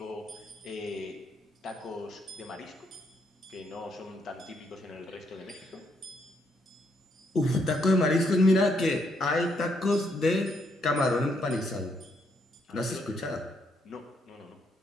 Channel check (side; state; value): both; normal; correlation 0.74